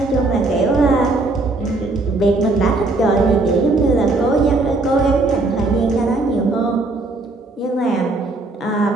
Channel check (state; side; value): quieter; left; 3.2 dB